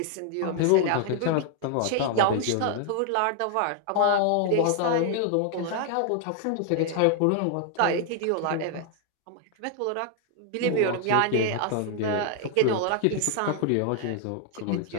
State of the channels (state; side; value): different; both; correlation 0.00